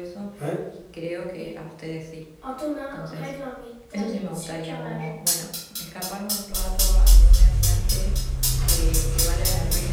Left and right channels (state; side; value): identical; both; correlation 1.00